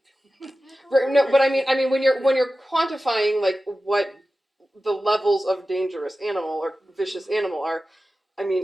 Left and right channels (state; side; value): normal; both; correlation 0.95